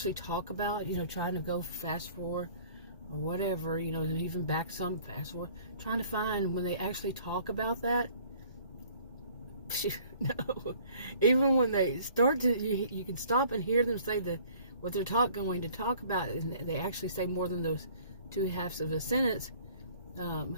talk about, you know, trying to go fast forward or whatever, you know, even back some, fast forward, trying to find when they actually talk about that. No, even when they start to, you can stop and hear them say what they're going to talk about, and they actually say more than those two halves of a sentence.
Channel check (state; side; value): inverted; both; correlation -0.54